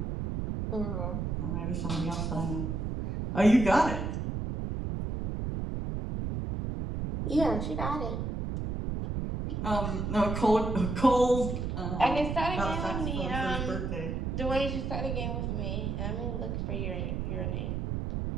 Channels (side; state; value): right; noise; rumble, 2 dB below the sound